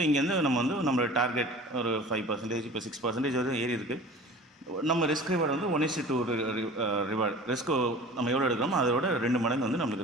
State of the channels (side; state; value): both; normal; correlation 0.41